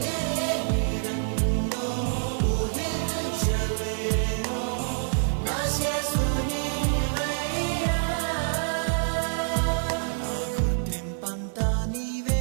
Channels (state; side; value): silent; left; 55 dB below the other